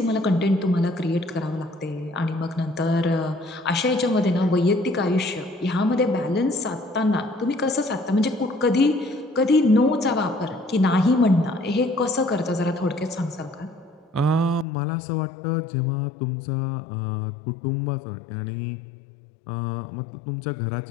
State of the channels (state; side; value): drops out; right; at 14.7 s